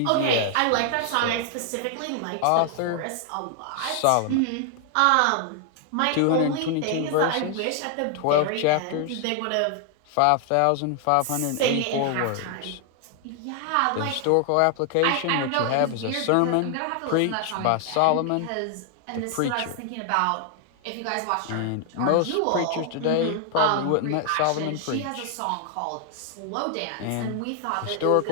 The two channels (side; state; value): both; different; correlation 0.00